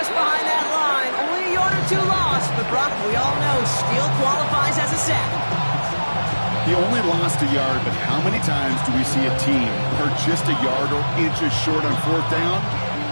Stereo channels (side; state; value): both; inverted; correlation -1.00